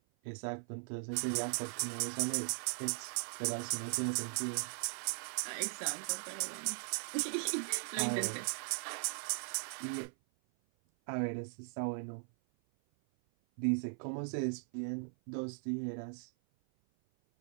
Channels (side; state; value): left; silent; 52 dB below the other